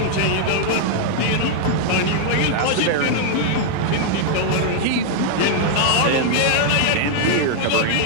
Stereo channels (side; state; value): both; different; correlation 0.00